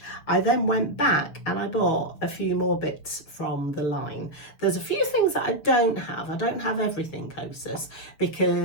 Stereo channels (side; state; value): right; late; 6.7 ms